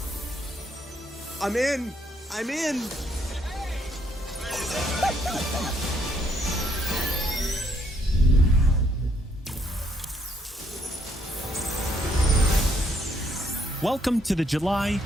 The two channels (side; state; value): both; normal; correlation 0.70